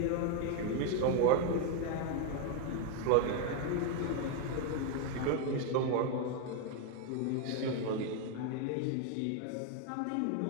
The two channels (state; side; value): different; both; correlation 0.01